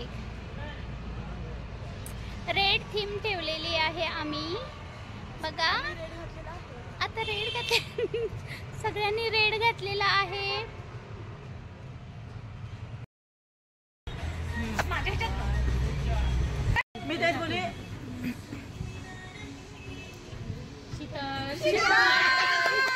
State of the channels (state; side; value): identical; both; correlation 1.00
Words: रेड थीम ठेवलेली आहे आम्ही, बघा आता रेड घातले सगळ्यांनी रेड घातलेला आहे। मी तेच बोले